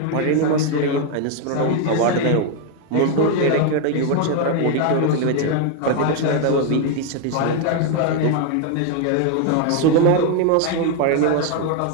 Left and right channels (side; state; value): both; different; correlation 0.01